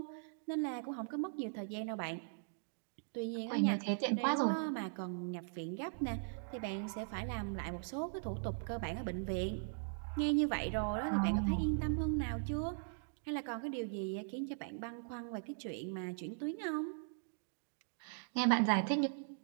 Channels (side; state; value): left; silent; digital silence